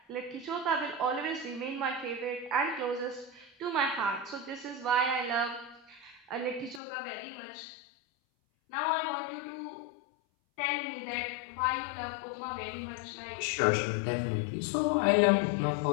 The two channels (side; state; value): right; drops out; at 6.8 s